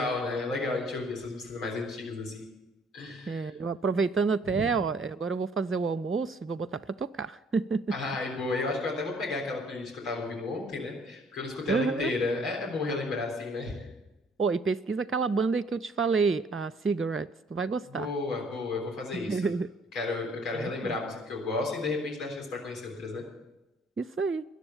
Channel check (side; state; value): both; normal; correlation 0.60